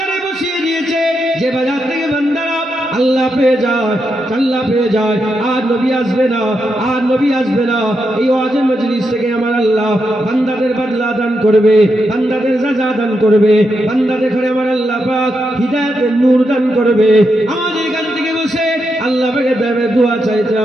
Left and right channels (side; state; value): both; normal; correlation 0.84